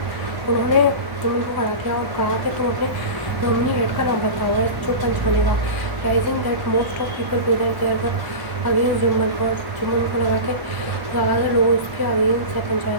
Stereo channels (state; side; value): late; left; 1.4 ms